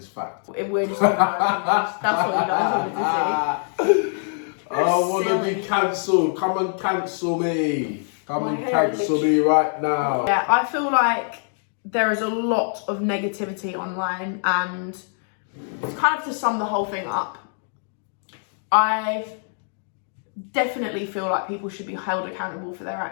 fact. We're just talking about opinions. That's what you guys wanted to see. I want to be cancelled. Come and cancel me. Come and cancel me right now. Yeah, I feel like there is a lot of negativity online, and kind of to sum the whole thing up, I definitely feel like people should be held accountable for their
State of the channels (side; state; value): right; silent; 60 dB below the other